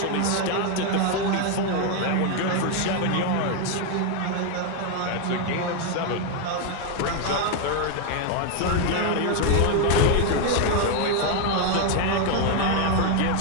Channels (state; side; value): different; both; correlation 0.01